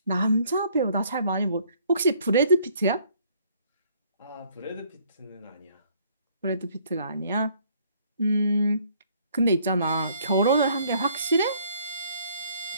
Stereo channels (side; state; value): both; inverted; correlation -0.62